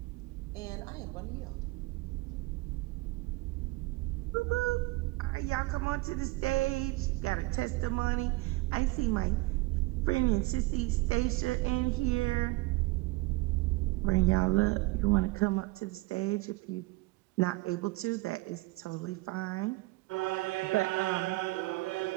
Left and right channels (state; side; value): quieter; left; 22.3 dB